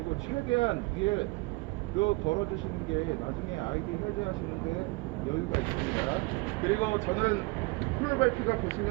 최대한 위에로 걸어 주시는 게 나중에 아이디 해제하시는데 여유가 있습니다. 그리고 저는 크롤 벨트가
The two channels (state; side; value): quieter; left; 25.1 dB